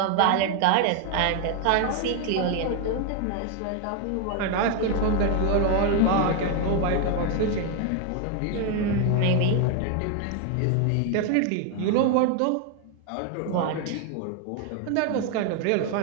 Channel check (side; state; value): both; different; correlation 0.01